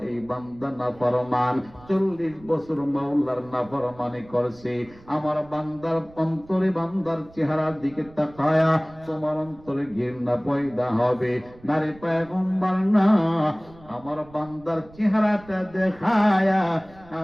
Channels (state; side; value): noise; right; rumble, 23 dB below the sound